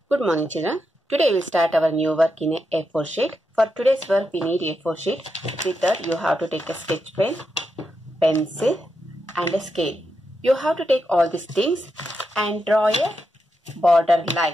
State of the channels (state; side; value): normal; both; correlation 0.85